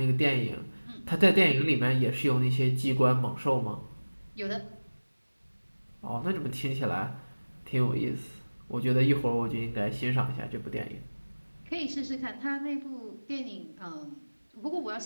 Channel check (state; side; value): inverted; both; correlation -1.00